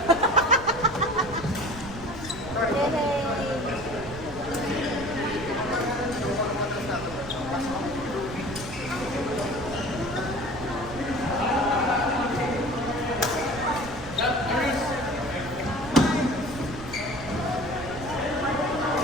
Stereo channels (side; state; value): right; noise; rumble, 13 dB below the sound